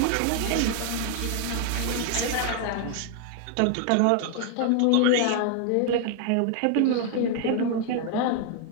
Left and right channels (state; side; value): different; both; correlation 0.00